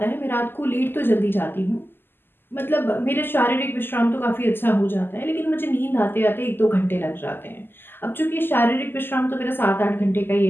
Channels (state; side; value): late; right; 0.10 ms